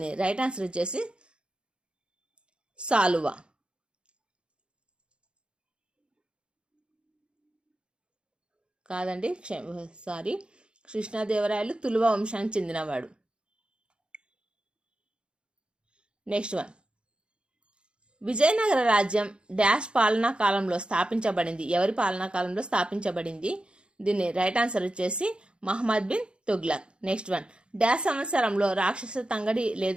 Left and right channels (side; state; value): left; late; 0.054 ms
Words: రైట్ ఆన్సర్ వచ్చేసి సాలువ. కాదండి, సారీ, కృష్ణదేవరాయలు తులువ వంశానికి చెందినవాడు. నెక్స్ట్ వన్, విజయనగర రాజ్యం డాష్ పాలనా కాలంలో స్థాపించబడింది. ఎవరి పాలనా కాలంలో స్థాపించబడింది? దీని రైట్ ఆన్సర్ వచ్చేసి Muhammad bin Tughlaq. Next one, dash సంవత్సరంలో రాక్షస తంగడి